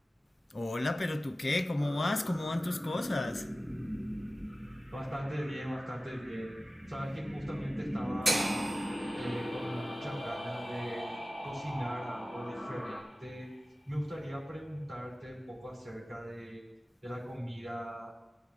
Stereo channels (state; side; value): normal; both; correlation 0.96